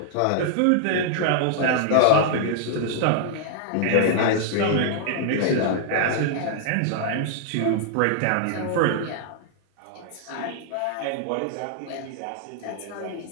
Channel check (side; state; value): both; different; correlation -0.01